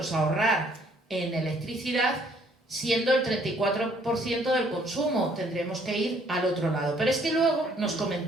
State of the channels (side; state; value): both; normal; correlation 0.63